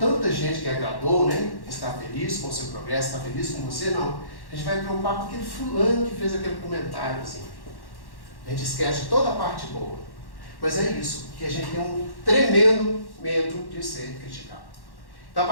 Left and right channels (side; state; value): right; late; 1.1 ms